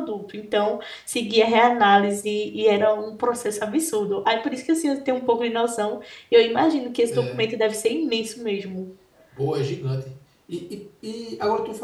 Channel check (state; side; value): identical; both; correlation 1.00